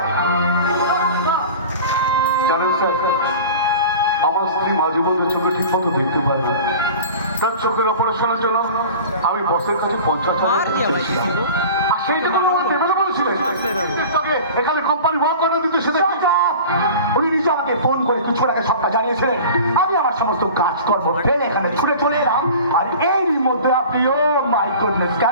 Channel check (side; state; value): both; inverted; correlation -0.38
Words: জানেন স্যার, আমার স্ত্রী মাঝে মধ্যে চোখে ঠিক মতো দেখতে পারে না। তার চোখের অপারেশনের জন্য আমি বসের কাছে 50,000 আর সেই টাকা আমার দেবে না বলেছিলেন। তাকে এখানে কোম্পানি ভাগ করে দিতে সেটা উনি নিজে আমাকে ফোন করে কিছু আগে সবটা জানিয়েছিলেন। আমি আমার সমস্ত কাজকর্ম ফেলে এখানে ছুটে চলে এলাম, আর এর মধ্যে আপনি ও মাই গুডনেস